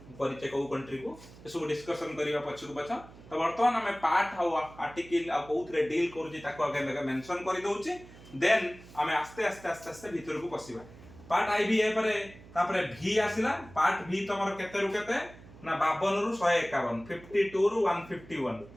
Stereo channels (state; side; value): noise; right; hum, 20 dB below the sound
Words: परिचय को कंट्री को ए सब डिस्कशन करिवा पछकू पछ तो वर्तमान हमें पार्ट हाउ आर्टिकल आ कोथरे डील करूची ताको आगे मेंशन करि दउची देन हमें आस्ते भीतर को पसिबा पार्ट आईवी ए परे तापरे भी आसिला पार्ट भी तमरो केते रु केते ना 52 रु 151 52 रु 151